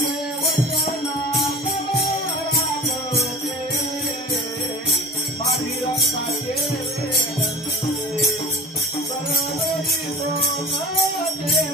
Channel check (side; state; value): both; normal; correlation 0.37